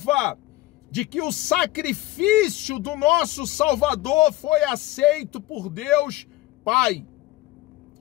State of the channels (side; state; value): right; quieter; 17.7 dB